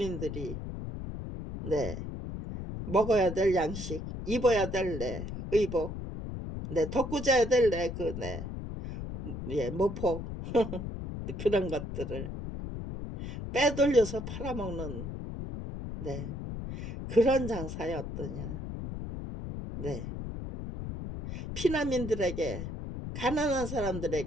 네 먹어야 될 양식, 입어야 될 네 의복, 네 덮고 자야 될 네 그 네 예 모포 그런 것들을 빼돌려서 팔아먹는 네 그런 장사였더냐. 네. 피난민들에게 가난한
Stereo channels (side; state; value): left; noise; rumble, 7 dB below the sound